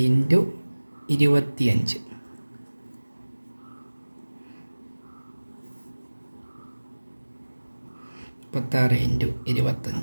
into 25. 36 into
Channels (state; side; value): inverted; both; correlation -1.00